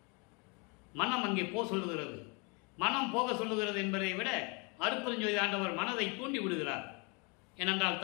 மனம் அங்கே சொல்லுகிறது. மனம் போக சொல்லுகிறது என்பதை விட அருட்பெருஞ்சோதி ஆண்டவர் மனதை தூண்டி விடுகிறார். ஏனென்றால்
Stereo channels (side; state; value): right; quieter; 31.8 dB